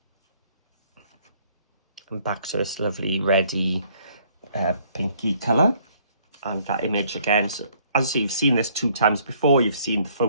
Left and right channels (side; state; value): both; inverted; correlation -0.63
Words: And back to this lovely reddy pinky colour. And that image again, so as you see, you've seen this 2 times before, you've seen the